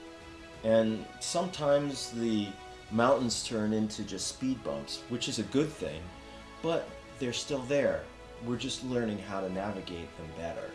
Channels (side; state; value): both; identical; correlation 1.00